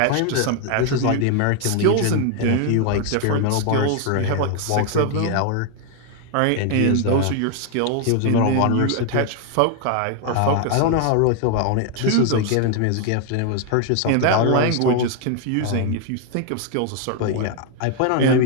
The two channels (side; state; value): both; different; correlation 0.00